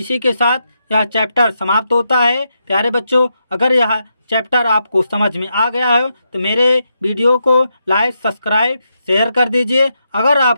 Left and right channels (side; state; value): both; inverted; correlation -0.83